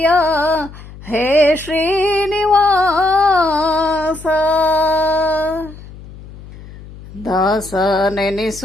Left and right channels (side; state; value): left; noise; hum, 17 dB below the sound